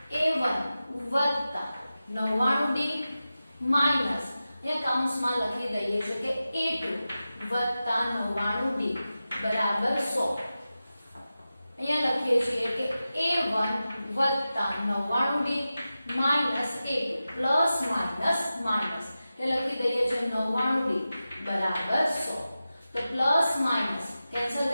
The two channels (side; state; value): both; inverted; correlation -0.93